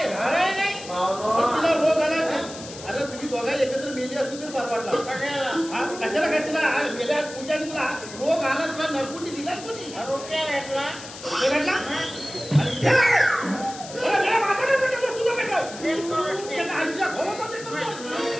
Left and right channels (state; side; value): noise; left; hiss, 14 dB below the sound